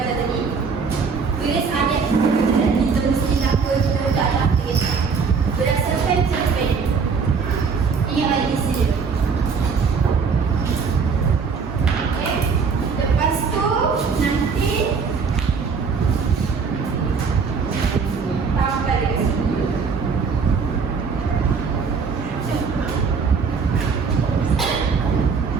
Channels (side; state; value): left; quieter; 5.4 dB